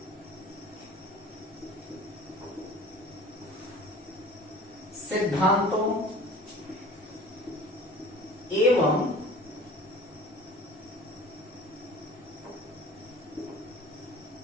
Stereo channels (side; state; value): both; normal; correlation 0.43